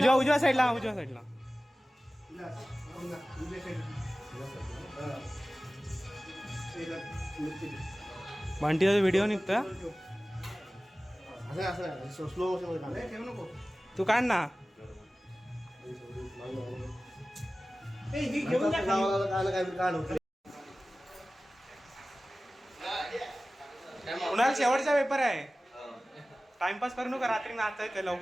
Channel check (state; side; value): normal; both; correlation 0.97